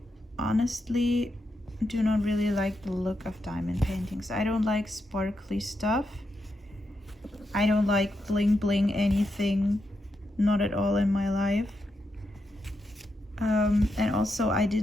honestly do not really like the look of diamond paintings. I don't like sparkly stuff. I don't like bling bling anything, not at all in my life. And also I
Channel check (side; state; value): both; normal; correlation 0.84